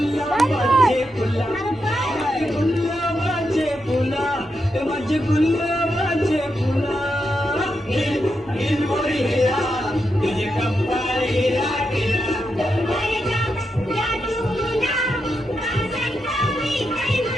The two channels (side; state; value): both; normal; correlation 0.85